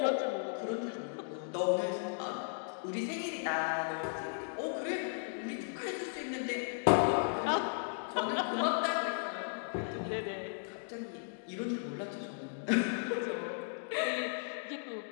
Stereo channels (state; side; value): silent; right; digital silence